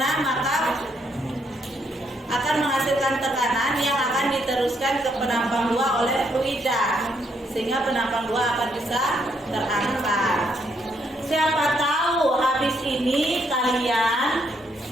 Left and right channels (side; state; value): both; normal; correlation 0.73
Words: maka akan menghasilkan tekanan yang akan diteruskan ke penampang 2 oleh fluida, sehingga penampang 2 akan bisa terangkat. Siapa tahu habis ini kalian